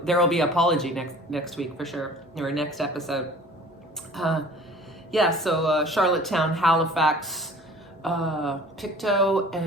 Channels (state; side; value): normal; both; correlation 0.47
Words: There will be an apology next week for sure, or next episode. Yeah, so Charlottetown, Halifax, Pictou,